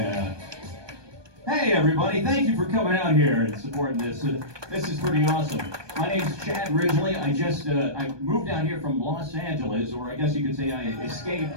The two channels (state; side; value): late; left; 1.2 ms